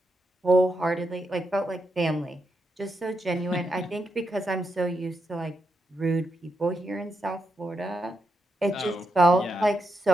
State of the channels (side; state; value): both; normal; correlation 0.83